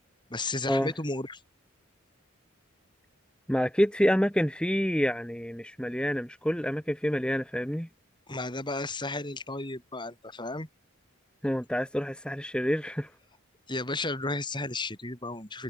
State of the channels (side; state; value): both; normal; correlation 0.85